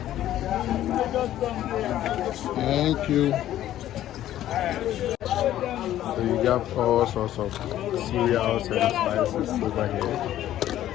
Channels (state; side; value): quieter; right; 12.7 dB